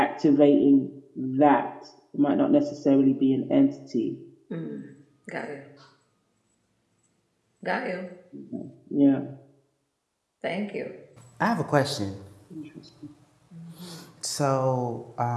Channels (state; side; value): identical; both; correlation 1.00